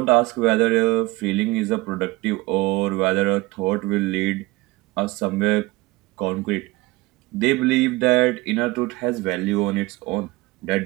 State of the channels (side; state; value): left; quieter; 21.0 dB